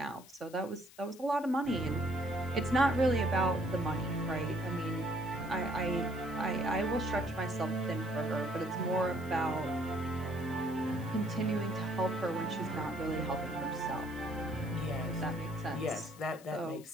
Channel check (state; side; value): noise; left; hiss, 21 dB below the sound